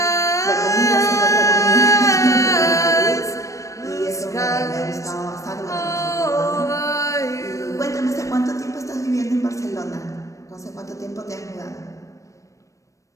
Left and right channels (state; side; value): late; right; 0.15 ms